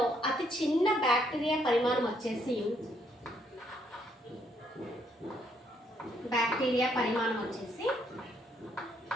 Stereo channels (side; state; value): both; normal; correlation 0.71